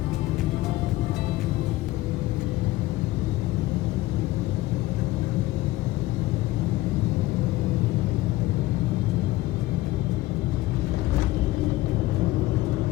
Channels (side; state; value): right; quieter; 17.3 dB